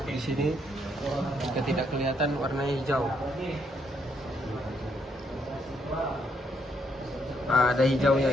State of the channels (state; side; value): normal; both; correlation 0.74